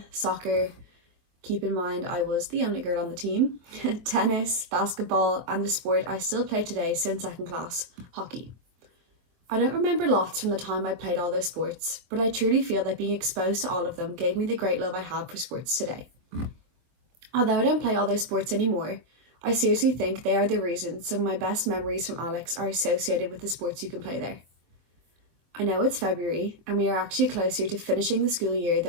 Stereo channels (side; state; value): left; late; 24 ms